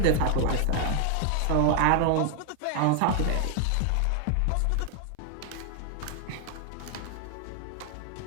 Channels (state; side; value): different; both; correlation 0.00